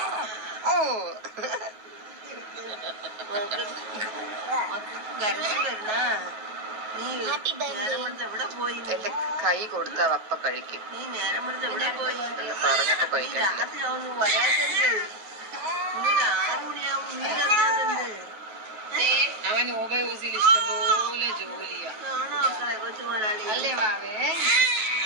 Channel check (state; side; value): late; left; 9.3 ms